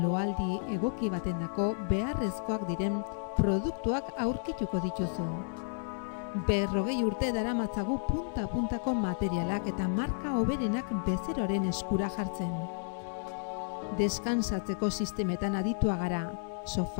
egoki batendako beharrezkoak diren produktuak aurkituko dituzu. 40 urte daramatzagu punta-puntako materialak eta marka hoberenak bezeroaren eskura jartzen. Deskansatzeko sistemetan aditua gara,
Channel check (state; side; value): silent; right; digital silence